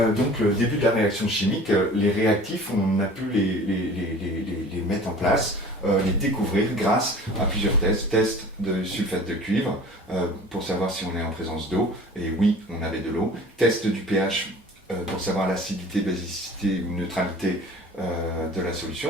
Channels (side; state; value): both; normal; correlation 0.44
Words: donc le début de la réaction chimique, les réactifs, on a pu les mettre en place, les découvrir grâce à plusieurs tests. Test de sulfate de cuivre pour savoir si on est en présence d'eau, et oui, on avait de l'eau. Test du pH pour savoir l'acidité, basicité ou neutralité de la